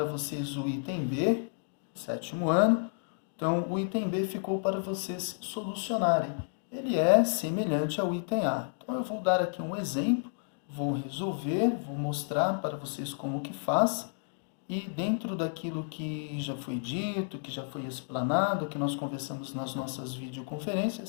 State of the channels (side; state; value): right; silent; digital silence